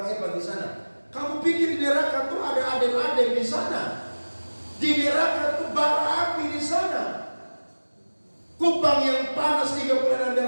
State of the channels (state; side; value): inverted; both; correlation -1.00